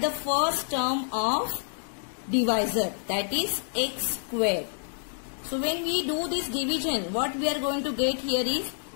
first term of divisor, that is x square. So when we do this division, what we are going to get here is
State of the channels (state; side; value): silent; right; digital silence